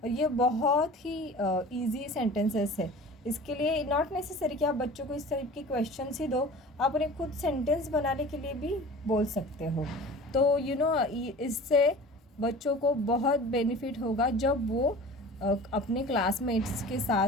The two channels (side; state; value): both; normal; correlation 0.40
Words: और ये बहुत ही इजी सेंटेंसेस है. इसके लिए नॉट नेसेसरी कि आप बच्चों को इस टाइप के क्वेश्चंस ही दो, आप उन्हें खुद सेंटेंस बनाने के लिए भी बोल सकते हो. तो इससे बच्चों को बहुत बेनिफिट होगा जब वो अपने क्लासमेट्स के साथ